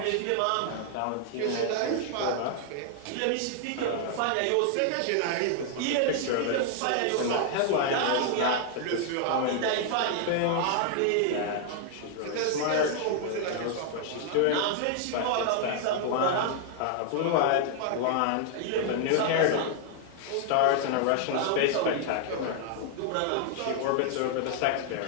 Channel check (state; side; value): different; both; correlation 0.00